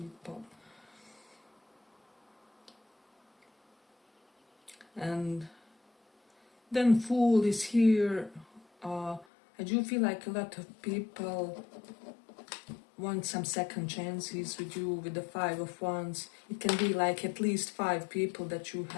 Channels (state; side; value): drops out; right; at 9.2 s